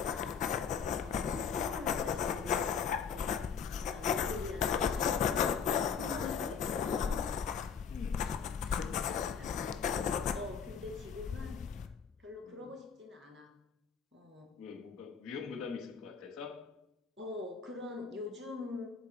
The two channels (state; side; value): quieter; right; 6.6 dB